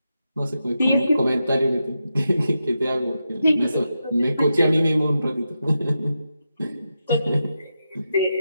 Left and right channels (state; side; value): inverted; both; correlation -0.87